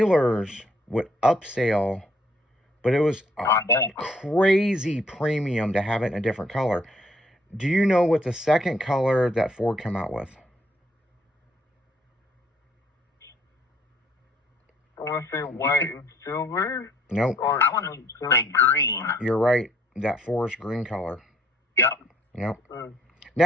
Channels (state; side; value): normal; both; correlation 0.65